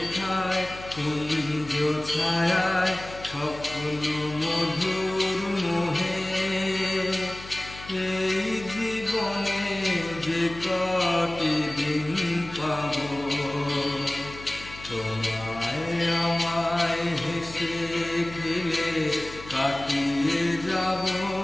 কুঞ্জ ছায়ায় স্বপ্ন মধুর মোহে, এই জীবনে যে কটি দিন পাব, তোমায় আমায় হেসে খেলে কাটিয়ে যাব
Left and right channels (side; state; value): left; noise; hum, 15 dB below the sound